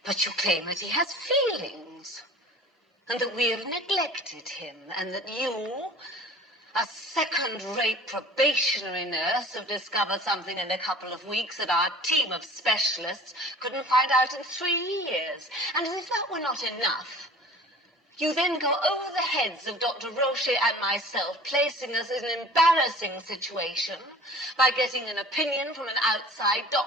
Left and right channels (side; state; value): both; normal; correlation 0.44